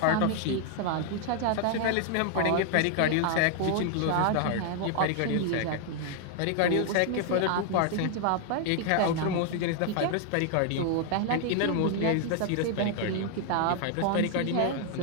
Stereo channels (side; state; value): both; different; correlation 0.00